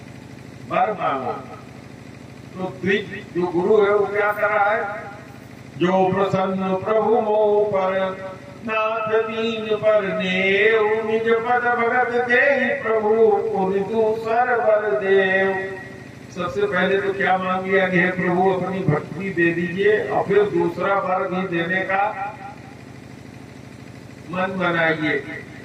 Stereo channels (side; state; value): both; identical; correlation 1.00